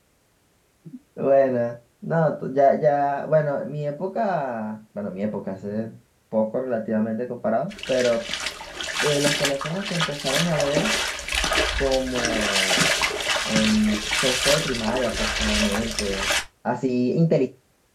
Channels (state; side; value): identical; both; correlation 1.00